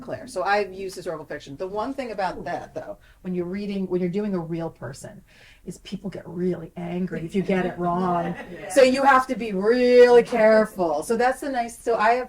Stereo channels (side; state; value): both; identical; correlation 1.00